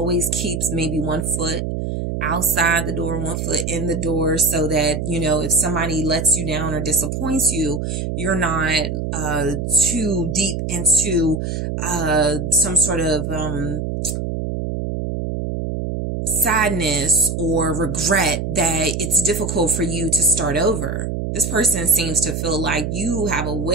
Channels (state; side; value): noise; right; hum, 3 dB below the sound